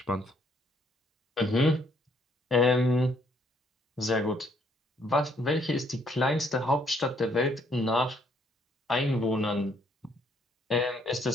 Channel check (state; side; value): normal; both; correlation 0.68